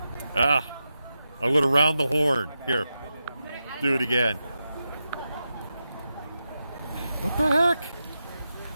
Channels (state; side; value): inverted; both; correlation -0.89